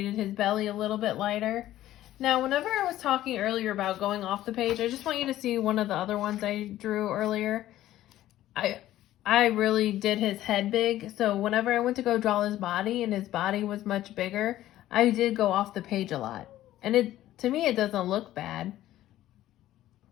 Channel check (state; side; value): quieter; right; 14.0 dB